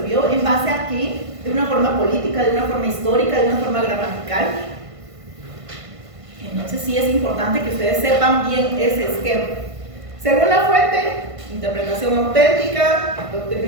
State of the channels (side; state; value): left; late; 1.5 ms